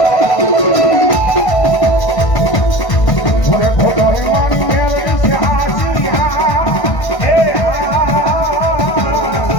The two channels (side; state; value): right; late; 1.5 ms